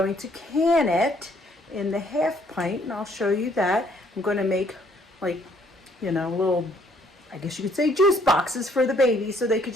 to can it in the half pint, and I'll show you that. I'm going to make like, you know, little, I guess you could say, juice boxes for the babies so they could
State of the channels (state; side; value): normal; both; correlation 0.65